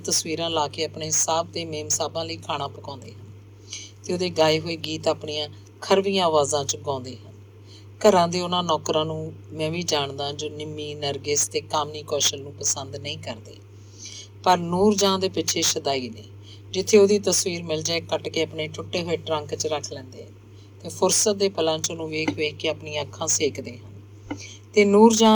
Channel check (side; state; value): both; identical; correlation 1.00